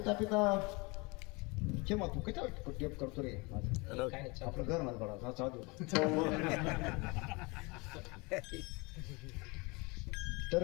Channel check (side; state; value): right; quieter; 27.1 dB